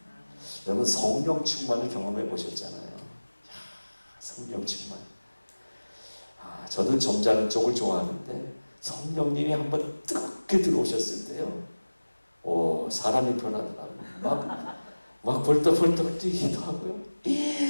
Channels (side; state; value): both; inverted; correlation -1.00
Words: 여러분 성령 충만을 경험해 보셨잖아요. 성령 충만. 저도 점잖은 쪽을 좋아하는데 성령님이 한번 뜨겁게 들어오셨을 때요. 사람이 변하더라고요. 막 벌떡벌떡 뛰기도 하고요.